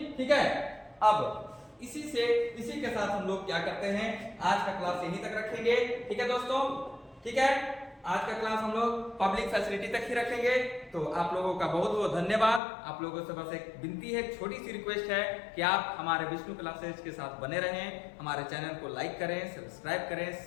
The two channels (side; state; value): right; drops out; at 12.6 s